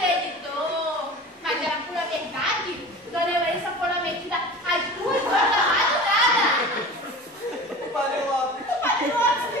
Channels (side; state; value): both; normal; correlation 0.36